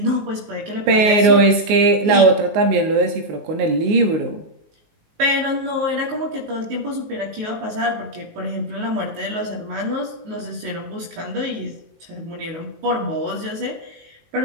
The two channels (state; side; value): late; left; 19 ms